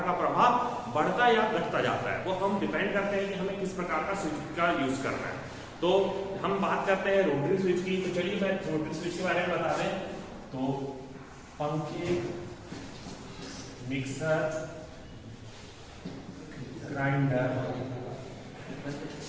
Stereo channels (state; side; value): identical; both; correlation 1.00